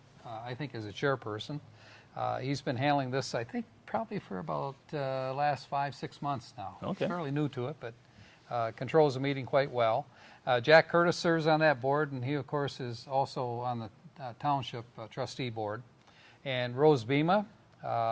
I think, as a chairperson. He's been handling this, I think, probably for about last 5-6 months now. Okay. Fairly new to it, but controls the meeting quite well. Jack Curtis serves on that board, and he, of course, is also on the Township Trustee Board. And Rose Bema,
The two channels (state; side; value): identical; both; correlation 1.00